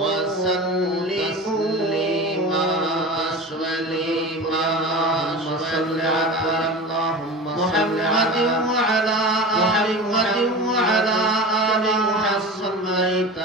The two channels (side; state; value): both; normal; correlation 0.31